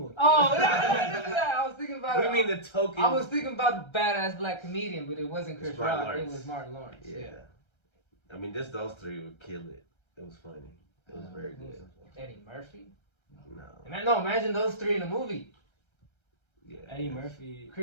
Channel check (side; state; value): right; late; 1.3 ms